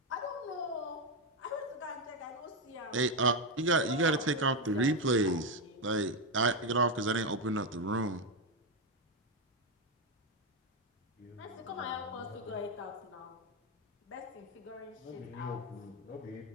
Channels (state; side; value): normal; both; correlation 0.07